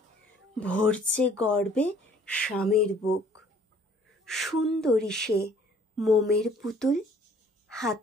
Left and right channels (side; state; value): both; normal; correlation 0.57